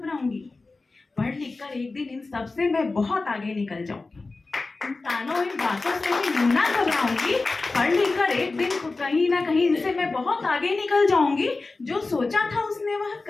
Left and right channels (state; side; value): quieter; right; 3.6 dB